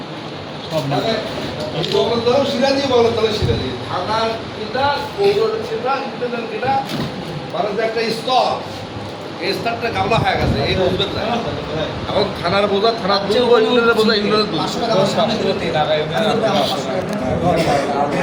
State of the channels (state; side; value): identical; both; correlation 1.00